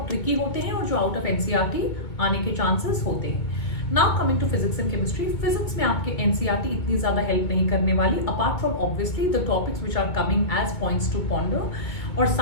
ट्रिकी होते हैं और जो आउट ऑफ एनसीईआरटी आने के चांसेस होते हैं. Now coming to physics and chemistry, physics में आपके एनसीईआरटी इतनी ज्यादा हेल्प नहीं करने वाली, apart from obviously the topics which are coming as points to ponder और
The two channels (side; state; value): right; late; 2.0 ms